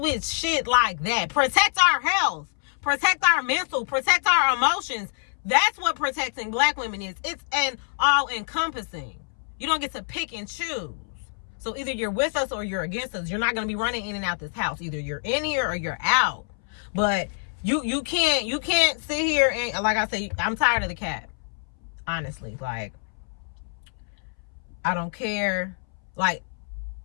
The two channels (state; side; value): silent; right; 61 dB below the other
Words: shit like that. Protect our health. Protect our mental. Protect our emotions. That's what protecting Black women is. It's an all-encompassing. You don't get to pick and choose. So either you're with us or you're against us. You're not going to be running in and out this house. Either you're in here or you're out. But you can't sit here and, like I say, I'm tired of the cat. Honestly, I don't care. Y'all,